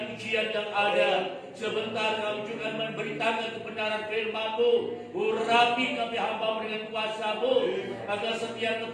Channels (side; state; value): both; identical; correlation 1.00